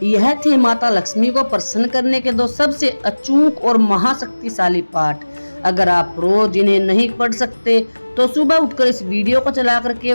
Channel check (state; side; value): inverted; both; correlation -1.00